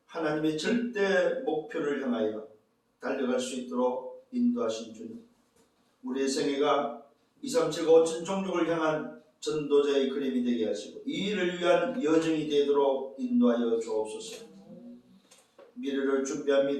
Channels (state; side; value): identical; both; correlation 1.00